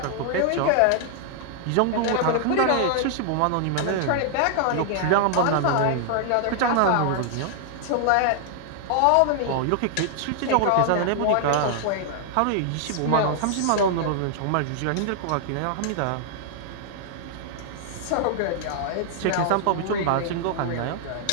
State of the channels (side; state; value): both; different; correlation 0.00